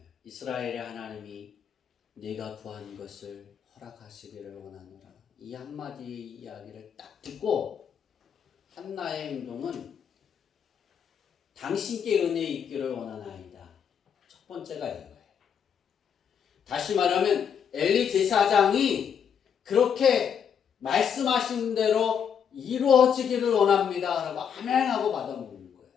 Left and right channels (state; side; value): quieter; right; 7.6 dB